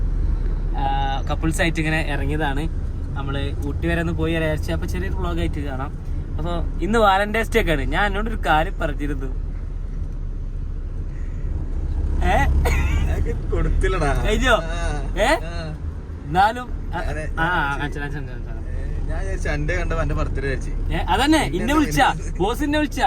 കപ്പിൾസായിട്ട് ഇങ്ങനെ ഇറങ്ങിയതാണ്. നമ്മൾ ഊട്ടി വരെ ഒന്ന് പോയി വിചാരിച്ചു. അപ്പോൾ ചെറിയൊരു വ്ളോഗായിട്ട് കാണാം. അപ്പോൾ ഇന്ന് വാലന്റൈൻസ് ഡേ ഒക്കെയാണ്. ഞാൻ എന്നോടൊരു കാര്യം പറഞ്ഞിരുന്നു, കഴിഞ്ഞോ? എന്നാലും അതന്നെ ഇന്നെ വിളിച്ച ബോസിനെ വിളിച്ച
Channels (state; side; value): identical; both; correlation 1.00